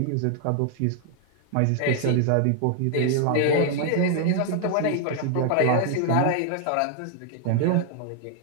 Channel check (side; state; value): both; different; correlation 0.00